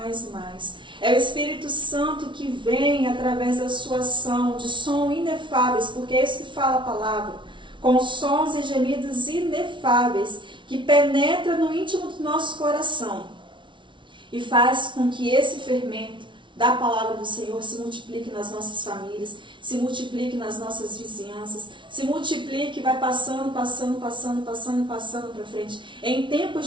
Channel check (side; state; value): left; late; 0.24 ms